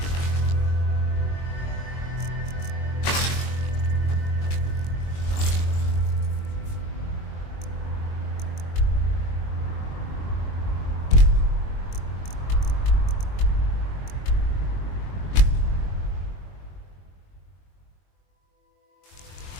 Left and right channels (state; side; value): late; right; 22 ms